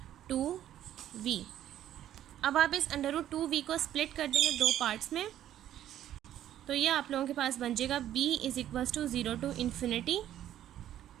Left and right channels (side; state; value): left; quieter; 11.8 dB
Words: अब आप इस √2v को स्प्लिट कर देंगे दो पार्ट्स में, तो ये आप लोगों के पास बन जाएगा b is equals to 0 to infinity